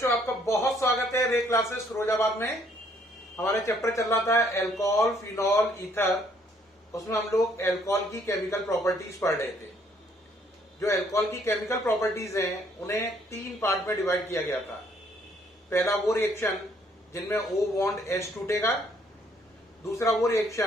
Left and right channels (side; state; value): both; normal; correlation 0.65